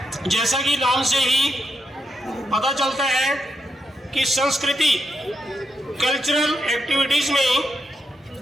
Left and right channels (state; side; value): normal; both; correlation 0.83